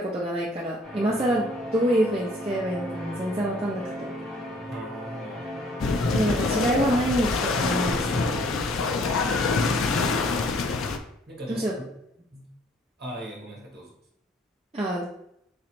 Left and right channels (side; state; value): both; normal; correlation 0.59